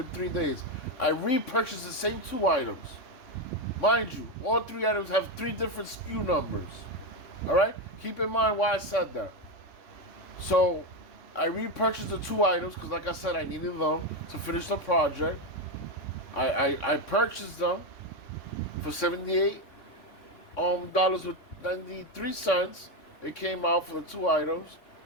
3 days. I repurchased the same two items. Mind you, all three items have three different SKU numbers. All right, keep in mind why I said that. So I repurchased the two items because, like I said, I needed them to finish the project. I purchased them for $78 with 93 cents. It came out for the two items.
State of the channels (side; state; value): right; late; 3.5 ms